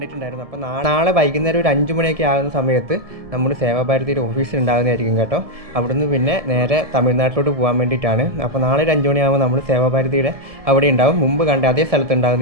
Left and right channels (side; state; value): left; late; 1.7 ms